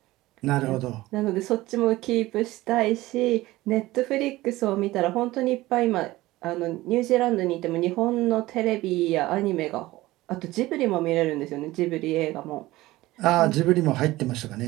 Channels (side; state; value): left; quieter; 18.0 dB